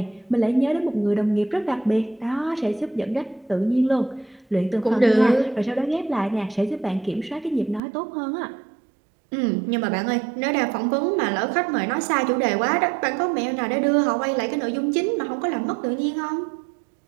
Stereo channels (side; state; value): left; drops out; at 7.8 s